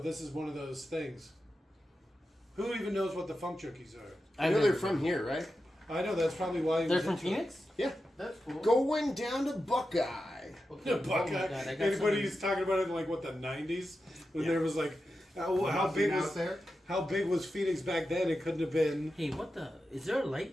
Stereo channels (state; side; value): normal; both; correlation 0.90